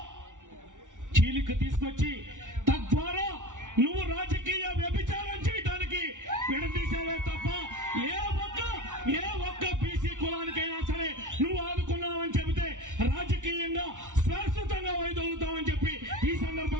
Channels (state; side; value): late; left; 0.87 ms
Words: చీలిక తీసుకొచ్చి తద్వారా నువ్వు రాజకీయ వ్యభిచారం చేయడానికి విడదీసావే తప్ప ఏ ఒక్క బీసీ కులానికైనా సరే నువ్వు ఆదుకున్నావని చెబితే రాజకీయంగా శాశ్వతంగా వైదొలుగుతామని చెప్పి ఈ